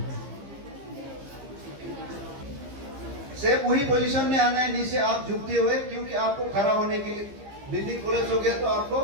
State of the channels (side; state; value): left; late; 15 ms